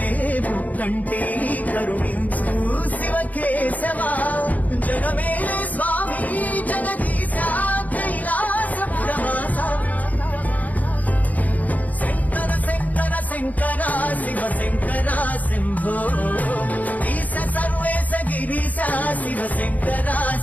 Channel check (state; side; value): late; right; 0.077 ms